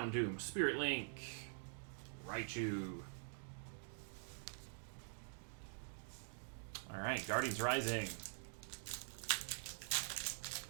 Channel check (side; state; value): left; silent; digital silence